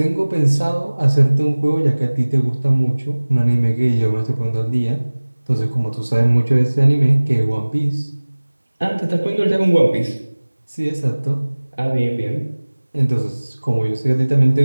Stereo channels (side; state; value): both; inverted; correlation -1.00